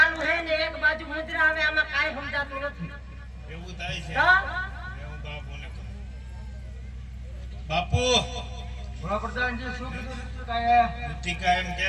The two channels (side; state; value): both; identical; correlation 1.00